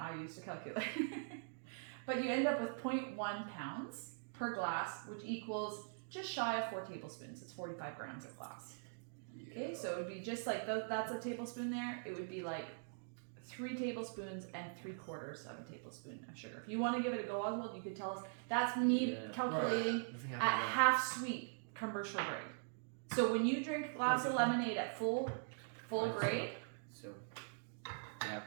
used a calculator. But you end up with 0.1 pounds per glass, which equals just shy of 4 tablespoons. It's 45 grams of glass. Okay, so it would be just like that's a tablespoon there. It would be like 3 tablespoons and 3/4 of a tablespoon of sugar. If you want to give it a go, Oswald, you could tell us. That's me Yeah. calculating The thing I at have half sweet commercial grade. So when you drink a glass of lemonade at full I see. grade, So, yeah.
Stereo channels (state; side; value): silent; left; digital silence